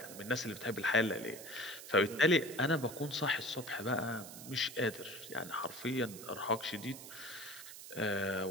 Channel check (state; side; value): noise; right; hiss, 13 dB below the sound